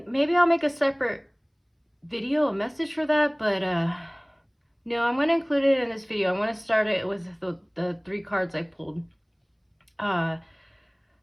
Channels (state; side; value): identical; both; correlation 1.00